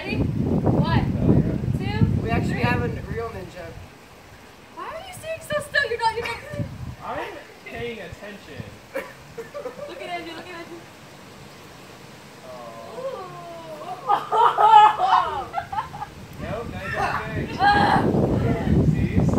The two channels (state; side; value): identical; both; correlation 1.00